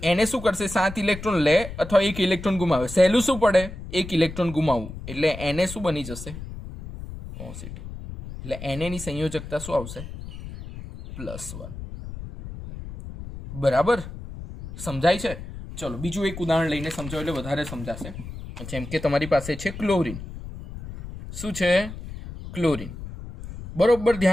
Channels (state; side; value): noise; left; rumble, 11 dB below the sound